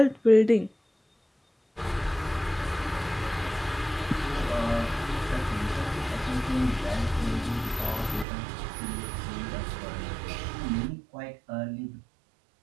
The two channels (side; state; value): left; drops out; at 8.2 s